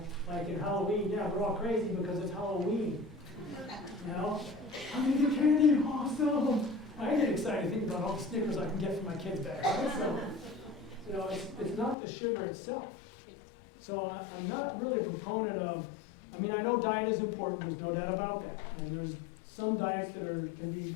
like in Halloween. Yeah, we're all crazy because it's Halloween. You know, I'm gonna get candy, awesome. I get excited thinking about all the Snickers I can get for my kids back. Right? So, you know, it's not the sugar itself. So I'm not really a proponent of. I mean, I know diet is important. There's no doubt about that. And there's some diets that can be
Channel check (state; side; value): drops out; right; at 12.0 s